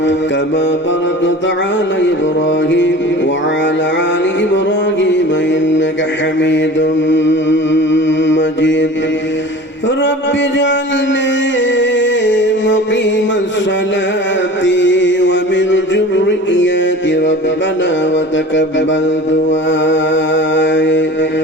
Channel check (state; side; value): normal; both; correlation 0.39